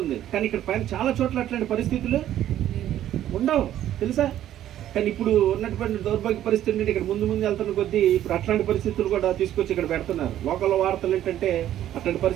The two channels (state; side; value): quieter; left; 12.0 dB